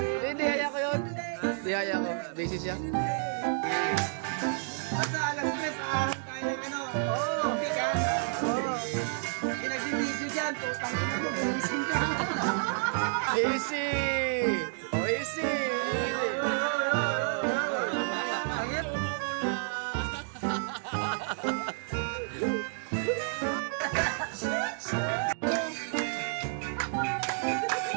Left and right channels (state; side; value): silent; left; digital silence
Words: Hindi, haya ko yun. Hindi, haya ko. Busy siya. Basta alas 3, ahon tayo ng ano. Oo. Hindi ka? Oo. Nag-video dyan, tutang ina mo. Easy! Oh, easy! Angin, umula!